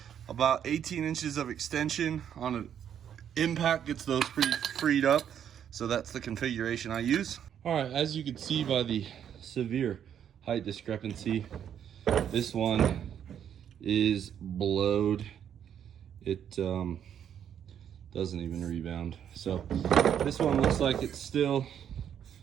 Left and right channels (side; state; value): left; quieter; 9.1 dB